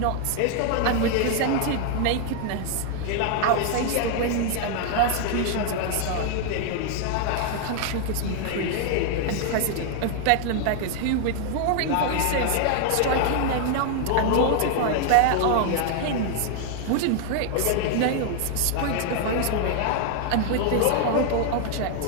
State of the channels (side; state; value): both; different; correlation 0.00